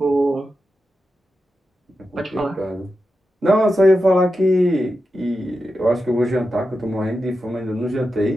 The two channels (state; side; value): normal; both; correlation 0.89